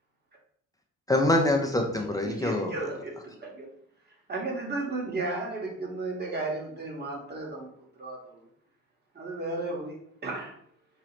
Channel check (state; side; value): normal; both; correlation 0.42